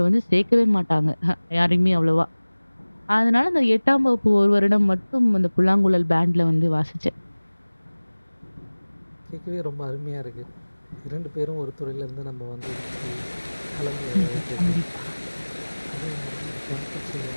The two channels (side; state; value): both; inverted; correlation -1.00